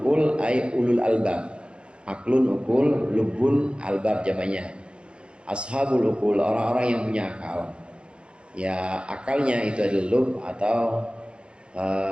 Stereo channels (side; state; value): left; late; 0.055 ms